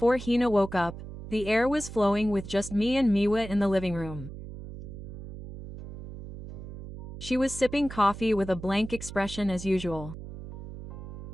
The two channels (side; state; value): right; noise; hum, 12 dB below the sound